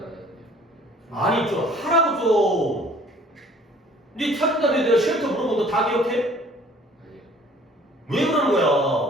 아니 좀 하라고 좀. 네 찾은 다음에 내가 쉘터 물어보면 너 다 기억해? 아니요. 왜 그러는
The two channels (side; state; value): both; normal; correlation 0.54